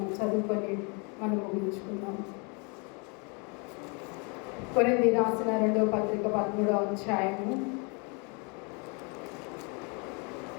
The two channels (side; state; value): right; quieter; 33.3 dB